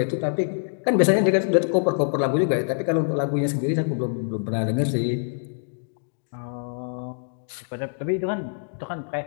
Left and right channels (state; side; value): silent; right; digital silence